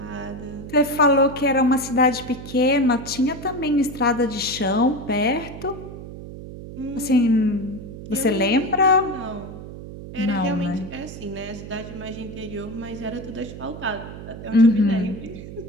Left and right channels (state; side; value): noise; right; hum, 12 dB below the sound